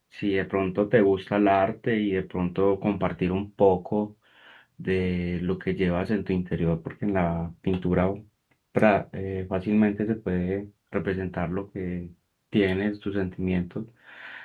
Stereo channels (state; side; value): identical; both; correlation 1.00